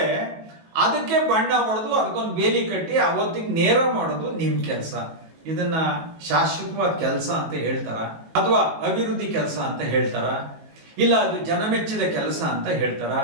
ಅದಕ್ಕೆ ಬಣ್ಣ ಹೊಡೆದು ಅದಕ್ಕೊಂದು ಬೇಲಿ ಕಟ್ಟಿ ಅವತ್ತಿಗೆ ನೇರ ಮಾಡೋದು ನಿಮ್ ಕೆಲಸ. ಇದನ್ನ ಶಾಶ್ವತವಾದ ಕೆಲಸ ಅಂತ ಹೇಳ್ತಾರ, ಅಥವಾ ಅಭಿವೃದ್ಧಿ ಕೆಲಸ ಅಂತ ಹೇಳ್ತಾರ, ಇಲ್ಲ ಅದು ಜನಮೆಚ್ಚಿದ ಕೆಲಸ ಅಂತ ಹೇಳ್ತಾರ,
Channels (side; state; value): left; late; 19 ms